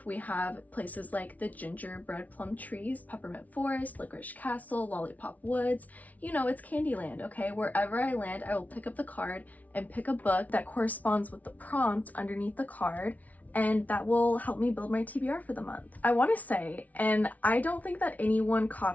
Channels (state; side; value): late; right; 0.072 ms